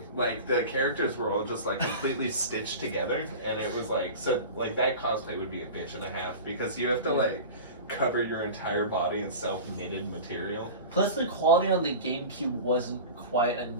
like the characters were all just like completely stitched together, and it was like, so like that cosplay would be a bitch and a half because you have to like cover your entire body in self-knitted material. Plus, the quality on the GameCube wasn't quite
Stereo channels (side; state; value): both; inverted; correlation -0.33